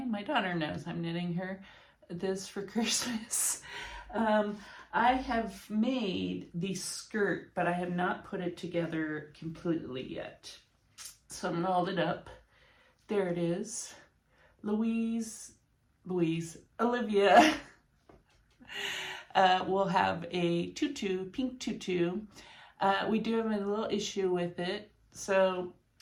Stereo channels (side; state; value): both; identical; correlation 1.00